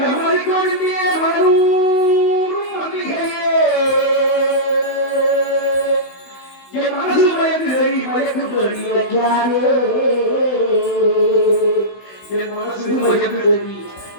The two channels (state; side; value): late; right; 16 ms